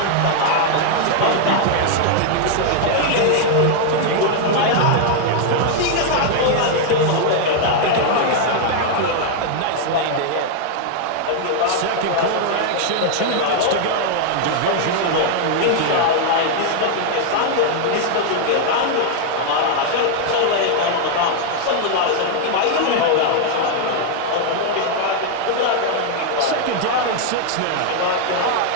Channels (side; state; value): both; different; correlation 0.00